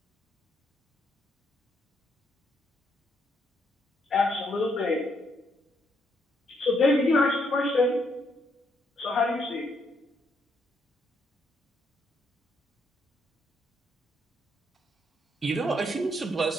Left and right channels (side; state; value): both; normal; correlation 0.74